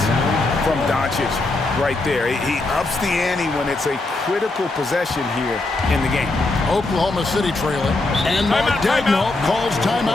from Doncic right there? He ups the ante when it's a critical possession here in the game. Oklahoma City trailing. And Mark Daigneault calls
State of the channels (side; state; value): right; quieter; 3.1 dB